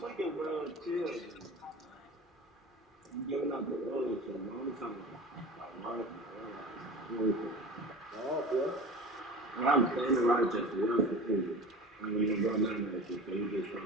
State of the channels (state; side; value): normal; both; correlation 0.35